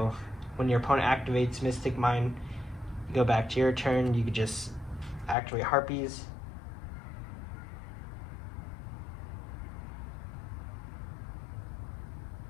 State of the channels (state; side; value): drops out; right; at 5.4 s